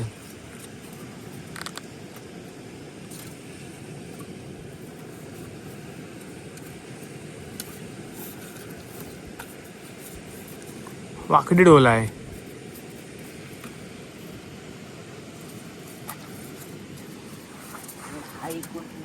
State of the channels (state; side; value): identical; both; correlation 1.00